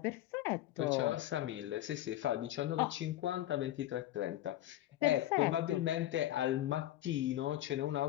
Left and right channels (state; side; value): quieter; right; 13.8 dB